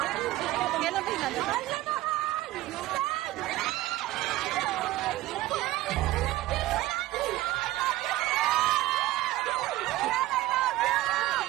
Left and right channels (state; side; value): quieter; left; 16.7 dB